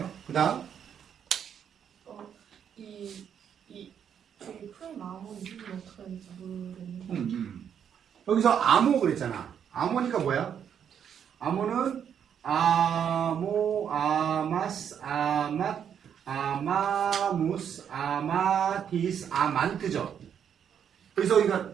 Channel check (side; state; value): left; quieter; 8.4 dB